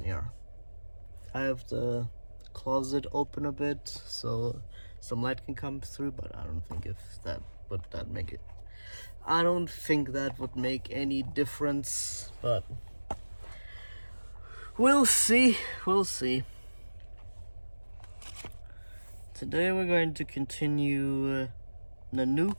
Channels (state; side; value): inverted; both; correlation -1.00